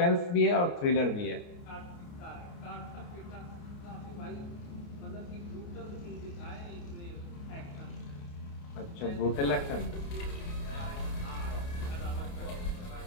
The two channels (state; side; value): late; right; 29 ms